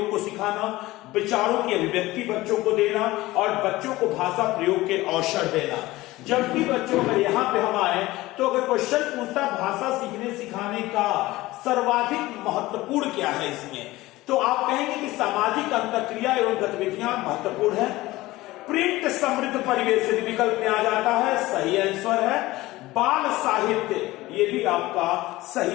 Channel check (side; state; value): right; quieter; 18.5 dB